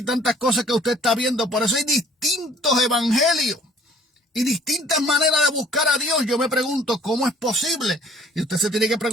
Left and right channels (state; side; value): normal; both; correlation 0.55